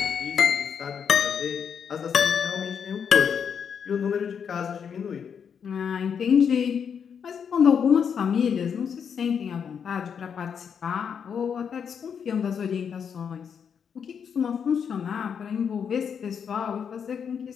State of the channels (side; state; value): right; quieter; 7.2 dB